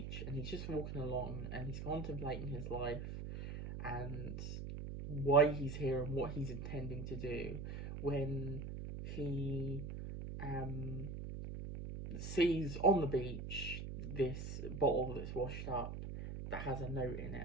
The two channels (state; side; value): noise; right; hum, 6 dB below the sound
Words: and he's just walking along, and he's contemplating his life and why he's here and what he's intending to do, when he sees on the beach this bottle that's washed up that has a note in